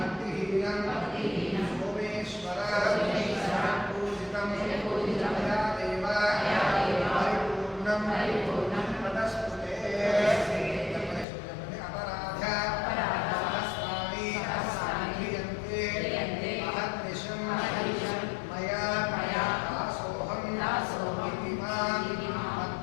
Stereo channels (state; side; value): drops out; right; at 11.2 s